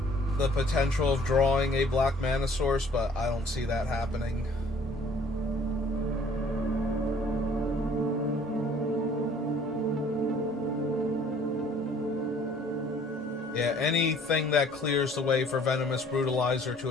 the potential of drawing a black mana source, but I don't see that happening. Yeah, anything that clears the way for Venomous Brutalizer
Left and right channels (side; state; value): both; normal; correlation 0.56